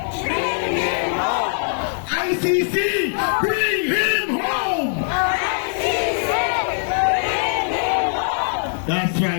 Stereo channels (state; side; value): silent; right; 63 dB below the other